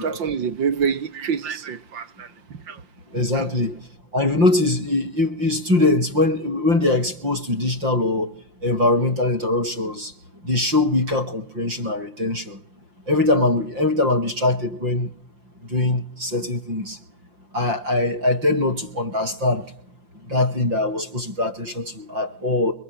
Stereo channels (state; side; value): late; left; 5.7 ms